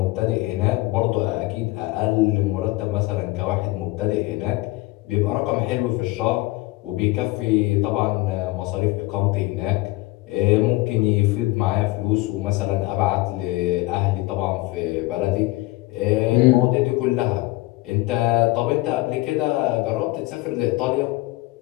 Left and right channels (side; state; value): right; quieter; 20.4 dB